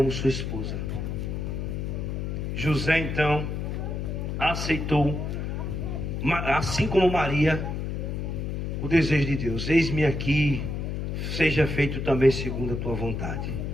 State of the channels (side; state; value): left; noise; hum, 3 dB below the sound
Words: sua esposa. José então aceitou, assim como Maria, o desejo de Deus. Eis-me aqui, seja feito também segundo a tua vontade.